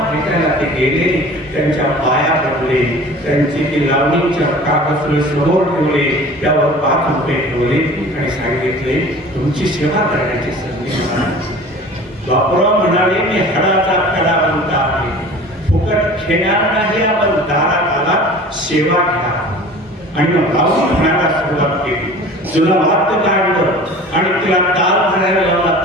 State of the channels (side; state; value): both; normal; correlation 0.42